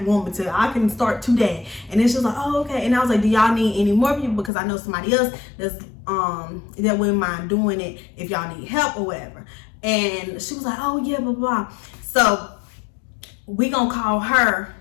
want me to. I can start today." And then she was like, "Oh, okay." And I was like, "Do y'all need any more people? Because I know somebody else that wouldn't mind doing it if y'all need help or whatever." And she was like, "Oh yeah, blah blah." So we gonna call her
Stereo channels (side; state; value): right; drops out; at 4.5 s